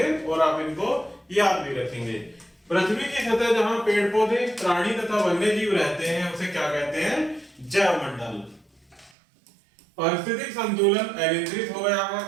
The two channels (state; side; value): drops out; left; at 9.1 s